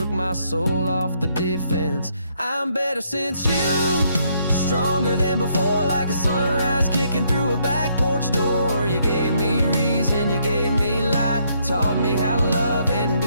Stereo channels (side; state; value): both; inverted; correlation -0.71